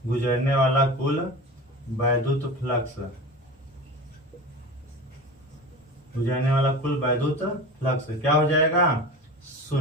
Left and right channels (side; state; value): both; normal; correlation 0.32